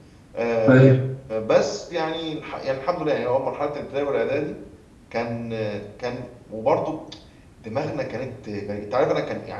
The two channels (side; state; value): both; identical; correlation 1.00